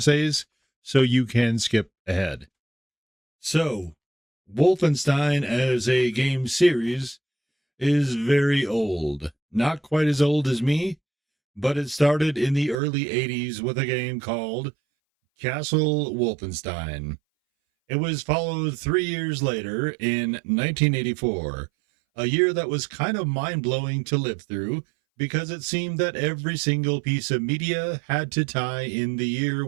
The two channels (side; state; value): left; drops out; at 12.8 s